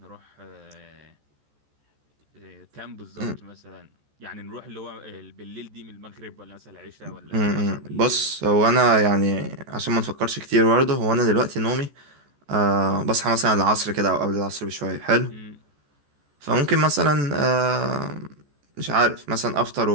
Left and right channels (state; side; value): late; left; 14 ms